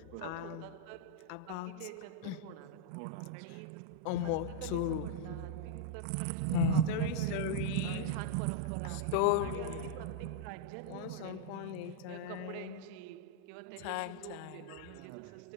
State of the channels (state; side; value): different; both; correlation -0.01